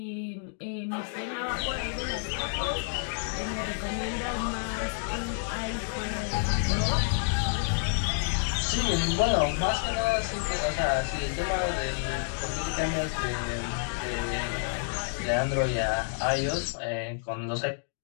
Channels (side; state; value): right; silent; digital silence